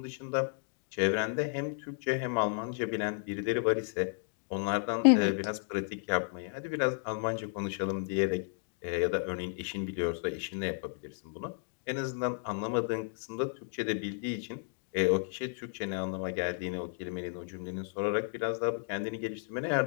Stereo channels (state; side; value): silent; right; 56 dB below the other